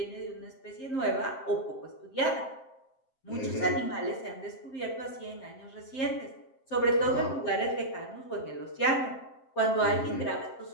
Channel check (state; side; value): late; right; 7.6 ms